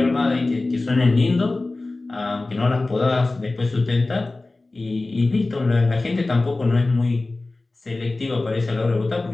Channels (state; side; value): quieter; right; 3.2 dB